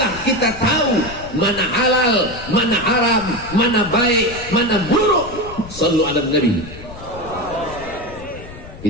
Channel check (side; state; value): left; noise; rumble, 15 dB below the sound